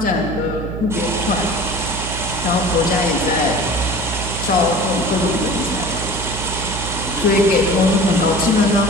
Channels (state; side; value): noise; right; hum, 7 dB below the sound